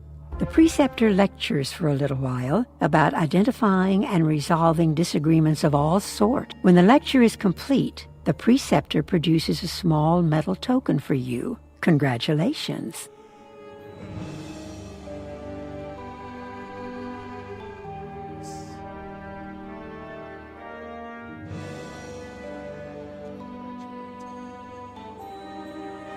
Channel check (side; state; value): both; identical; correlation 1.00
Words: The preceptor lectures for a little while about identifying and resolving disagreements of all sort. When the lecture is complete, the preceptor produces a small metal token for you. Congratulations.